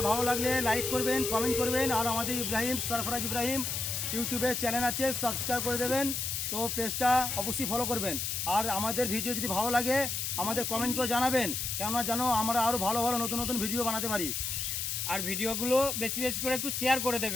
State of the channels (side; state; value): left; noise; hiss, 2 dB below the sound